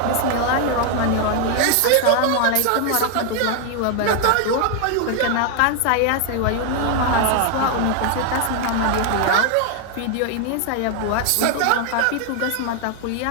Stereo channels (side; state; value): both; different; correlation 0.00